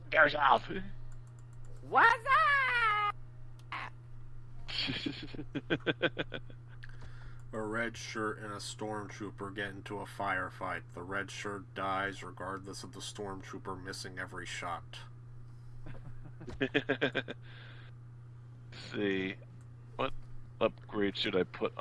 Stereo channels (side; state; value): both; identical; correlation 1.00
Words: yourself. What's up? A red shirt and a stormtrooper get into a firefight. The red shirt dies regardless of the stormtrooper missing every shot. Let's see. What upgrade should I put